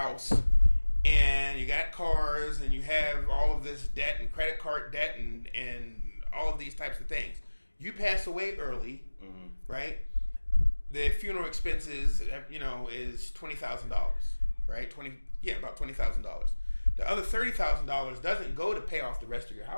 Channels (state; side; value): inverted; both; correlation -1.00